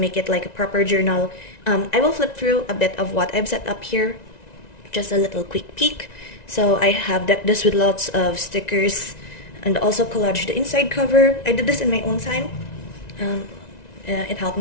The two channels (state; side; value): late; right; 1.9 ms